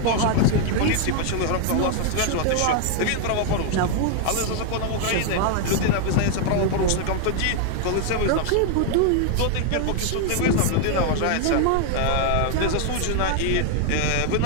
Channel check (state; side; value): different; both; correlation 0.00